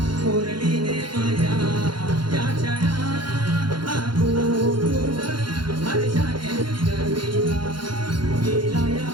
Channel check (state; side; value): late; left; 0.72 ms